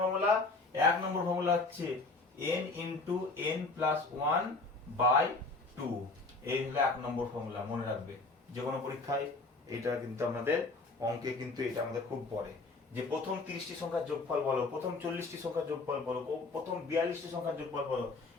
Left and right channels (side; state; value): right; quieter; 3.5 dB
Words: ফর্মুলা 1 নম্বর ফর্মুলা হচ্ছে n ইন্টু n প্লাস 1/2, এই হলো 1 নম্বর ফর্মুলা, মনে রাখবে। যে কোনো পরীক্ষায় এটা কিন্তু আমাদের অঙ্কে কিন্তু এটা আমাদের খুব পড়ে, যে প্রথম 30টি সংখ্যার যোগফল বলো, প্রথম 40টি সংখ্যার যোগফল বলো, প্রথম 42টি সংখ্যার যোগফল বলো,